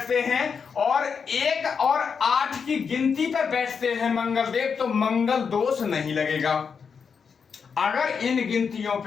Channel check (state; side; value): quieter; right; 6.1 dB